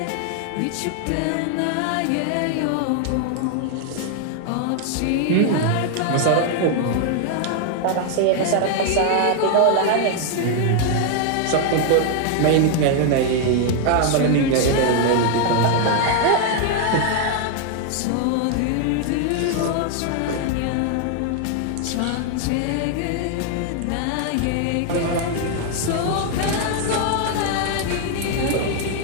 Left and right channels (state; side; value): different; both; correlation 0.00